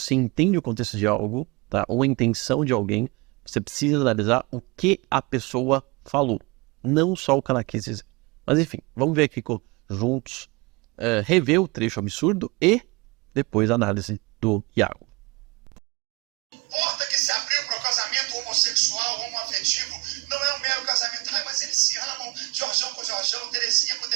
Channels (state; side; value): quieter; left; 26.2 dB